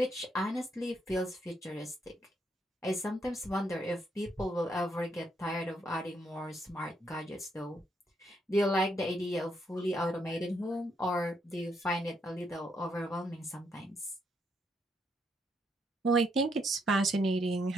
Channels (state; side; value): normal; both; correlation 0.75